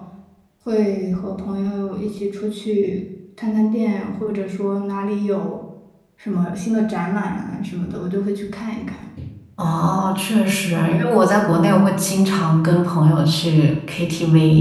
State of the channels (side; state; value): both; identical; correlation 1.00